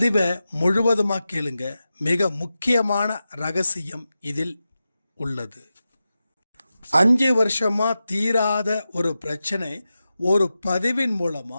முழுவதுமாக கேளுங்க, மிக முக்கியமான ரகசியம் இதில் உள்ளது. 5 வருஷமா தீராத ஒரு பிரச்சனை ஒரு பதிவின் மூலமா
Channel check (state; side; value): inverted; both; correlation -0.92